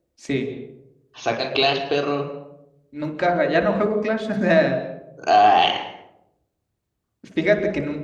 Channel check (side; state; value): both; identical; correlation 1.00